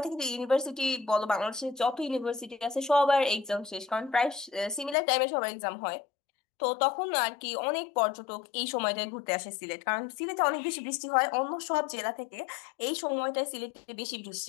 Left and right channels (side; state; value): right; drops out; at 5.0 s